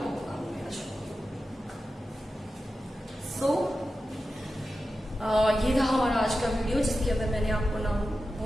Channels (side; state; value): both; normal; correlation 0.92